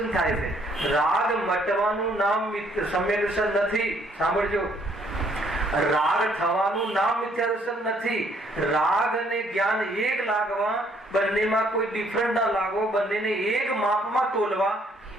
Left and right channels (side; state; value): both; normal; correlation 0.65